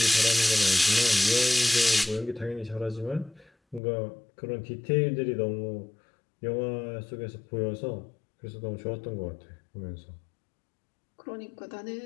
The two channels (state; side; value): drops out; right; at 3.8 s